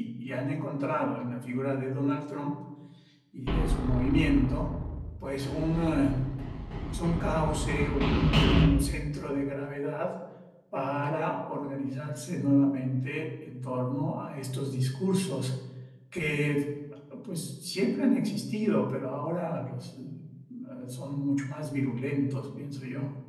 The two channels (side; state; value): both; identical; correlation 1.00